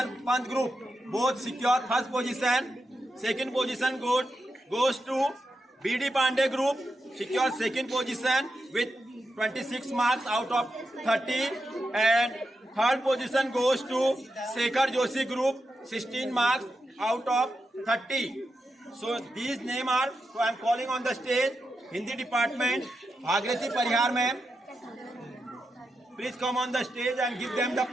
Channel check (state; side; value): normal; both; correlation 0.88